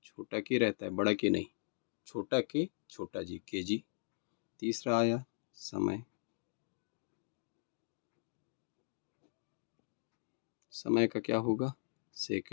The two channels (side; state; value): right; silent; digital silence